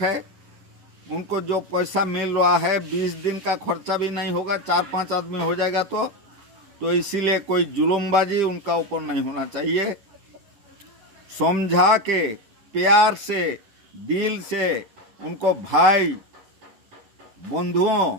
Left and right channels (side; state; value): left; late; 11 ms